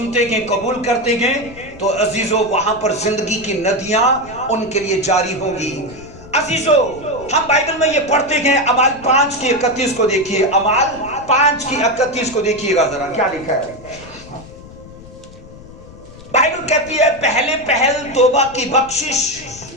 گئے، قبول کرتے گئے تو عزیزو وہاں پر زندگی کی ندیاں ان کے لیے جاری ہوں گی۔ عزیزو، ہم بائبل میں یہ پڑھتے ہیں، اعمال 5:31 کو دیکھیے، اعمال 5:31 کو دیکھیے گا ذرا، کیا لکھا ہے۔ بائبل کہتی ہے پہلے پہل توبہ کی بخشش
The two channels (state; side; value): noise; left; rumble, 19 dB below the sound